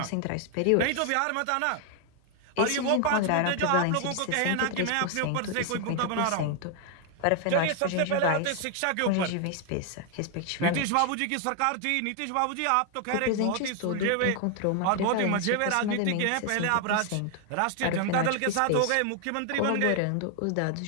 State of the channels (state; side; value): different; both; correlation 0.00